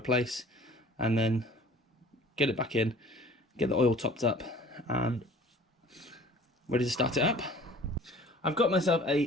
and then get it back in, get the oil topped up, and ready to start it up. I've got myself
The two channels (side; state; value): both; normal; correlation 0.48